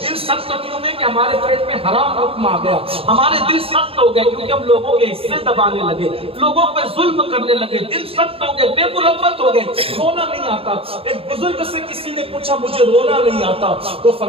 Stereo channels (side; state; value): left; late; 0.27 ms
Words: دل سخت کیوں میں کہ ہمارے پیٹ میں حرام حکم آ گیا، ہمارے دل سخت ہو گئے کیونکہ ہم لوگوں کے حصے دبانے لگے، لوگوں پہ ظلم کرنے لگے، دل سخت ہو گئے، بے مربت ہو گئے، رونا نہیں آتا۔ ایک بزرگ سے کسی نے پوچھا مجھے رونا نہیں آتا، تو